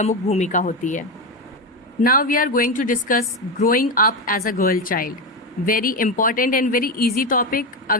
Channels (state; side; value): normal; both; correlation 0.14